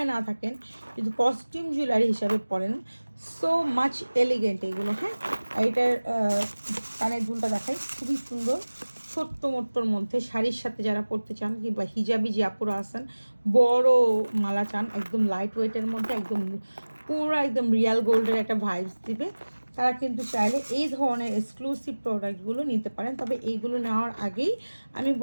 না থাকেন, যদি কস্টিউম জুয়েলারি হিসাবে পরেন, সো মাচ এলিগেন্ট এগুলো। হ্যাঁ, এটার কানের দুলটা দেখাই, খুবই সুন্দর, ছোট্ট মোট্টোর মধ্যে শাড়ির সাথে যারা পরতে চান, কিংবা হিজাবি যে আপুরা আছেন, বড় মালা চান, একদম লাইট ওয়েটের মধ্যে, একদম পুরো একদম রিয়াল গোল্ডের একটা ভাইবস দিবে, তারা কিন্তু চাইলে এই ধরনের এক্সক্লুসিভ প্রোডাক্টগুলো নিতে পারেন। তবে এইগুলো নেওয়ার আগেই আমি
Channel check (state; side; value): inverted; both; correlation -1.00